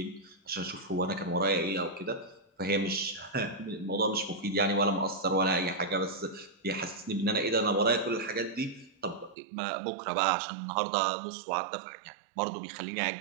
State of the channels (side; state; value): left; drops out; at 9.3 s